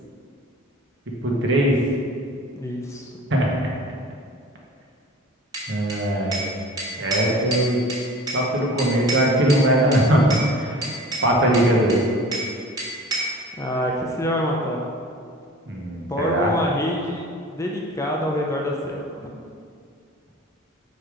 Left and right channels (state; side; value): normal; both; correlation 0.43